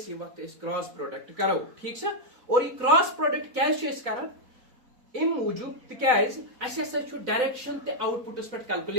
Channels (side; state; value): left; late; 4.0 ms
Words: ये वक्त इस क्रॉस प्रोडक्ट करो. ठीक छ? और ये क्रॉस प्रोडक्ट क्या छ इस करन इन मूजूब तिकाज अस हसा छ डायरेक्शन ते आउटपुटस पर